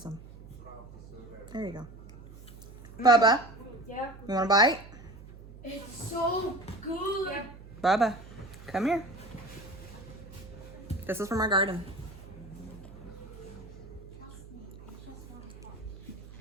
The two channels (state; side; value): noise; right; hum, 17 dB below the sound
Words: some. There you go. Bubba, Yeah. you want a bite? It's so good. Yeah. Bubba, come here. This is from our garden.